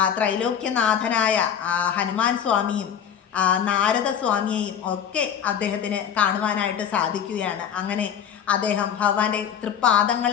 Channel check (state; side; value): quieter; right; 8.6 dB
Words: ത്രൈലോക്യനാഥനായ ഹനുമാൻ സ്വാമിയും നാരദസ്വാമിയെയും ഒക്കെ അദ്ദേഹത്തിന് കാണുവാനായിട്ട് സാധിക്കുകയാണ്. അങ്ങനെ അദ്ദേഹം ഭഗവാന്റെ